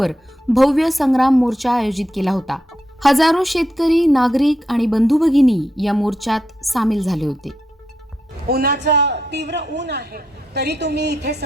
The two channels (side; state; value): both; normal; correlation 0.82